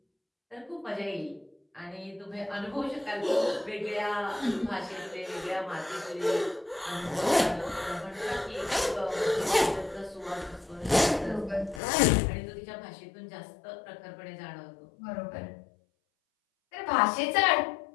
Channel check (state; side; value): drops out; right; at 11.8 s